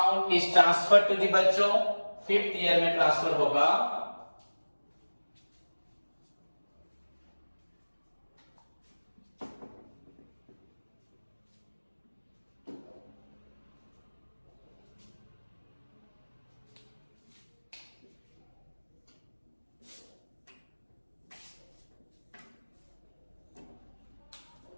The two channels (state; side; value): inverted; both; correlation -1.00